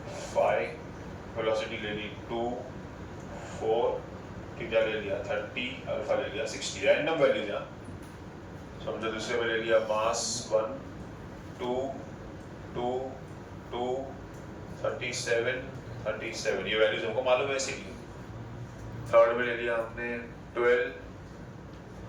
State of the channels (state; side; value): identical; both; correlation 1.00